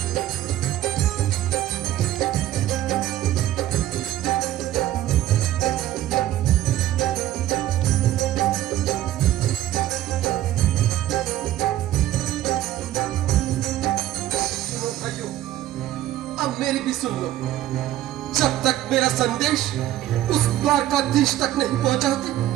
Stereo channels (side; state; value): left; quieter; 13.7 dB